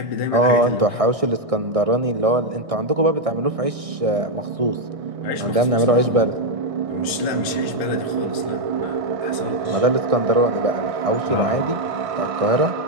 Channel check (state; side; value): late; left; 1.6 ms